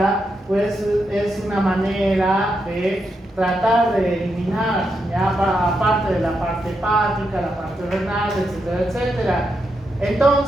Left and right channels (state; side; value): normal; both; correlation 0.83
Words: pues es una manera de tratar de eliminar, ya aparte de la parte hepática, la parte renal, etcétera, etcétera.